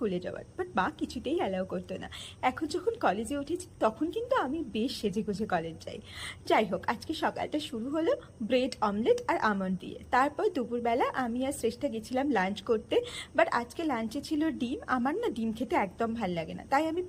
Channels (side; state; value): both; identical; correlation 1.00